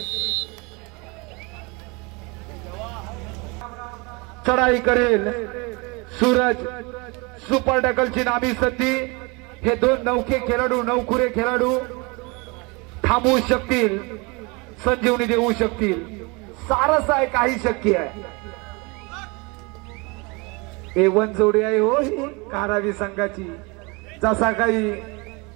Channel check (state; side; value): quieter; left; 28.1 dB